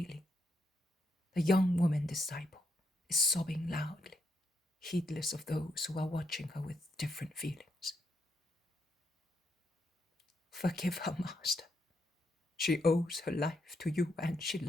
the young woman disciple is sobbing loudly, heedless of those who are watching her with different feelings. Forgive her, Master. She owes her life to you and she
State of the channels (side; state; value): both; normal; correlation 0.78